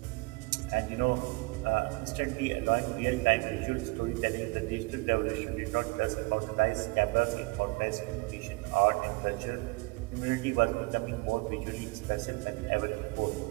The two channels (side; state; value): left; quieter; 26.1 dB